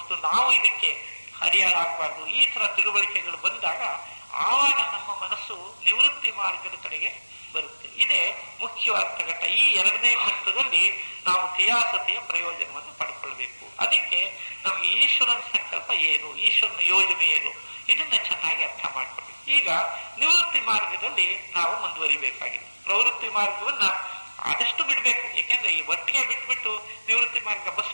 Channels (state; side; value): inverted; both; correlation -1.00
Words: ನಾವು ಇದಕ್ಕೆ ಹರಿಯಾಳಾಗಬಾರ್ದು. ಈ ತರ ತಿಳುವಳಿಕೆಗಳು ಬಂದಾಗ ಆವಾಗ ನಮ್ಮ ಮನಸ್ಸು ನಿವೃತ್ತಿ ಮಾರ್ಗದ ಕಡೆಗೆ ಬರುತ್ತೆ. ಇದೇ ಮುಖ್ಯವಾದ ಘಟ್ಟ. ಈ 2ನೇ ಘಟ್ಟದಲ್ಲಿ ನಾವು ಥಿಯಾಸಫಿಯ ಪ್ರಯೋಜನವನ್ನು ಪಡ್ಕೊಳ್ಬೇಕು. ಅದಕ್ಕೆ ನಮ್ಗೆ ಈಶ್ವರನ ಸಂಕಲ್ಪ ಏನು, ಈಶ್ವರನ ಯೋಜನೆ ಏನು, ಇದನ್ನ ಚೆನ್ನಾಗಿ ಅರ್ಥ ಮಾಡ್ಕೊಳ್ಬೇಕು. ಈಗ ನಿವೃತ್ತಿ ಮಾರ್ಗದಲ್ಲಿ ನಾವು ಮುಂದುವರಿಬೇಕಾಗಿದೆ. ಪ್ರವೃತ್ತಿ ಮಾರ್ಗವನ್ನ ಆದಷ್ಟು ಬಿಡ್ಬೇಕು. ಯಾಕೆಂದ್ರೆ ಈ ಒಟ್ಟಿಗೆ ಬಿಟ್ಬಿಟ್ಟು ನಿವೃತ್ತಿ ಮಾರ್ಗ ಬಸ್